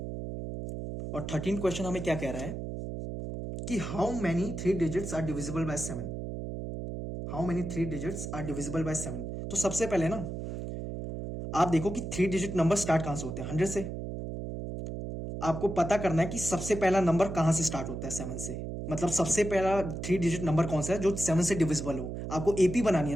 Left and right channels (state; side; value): noise; right; hum, 6 dB below the sound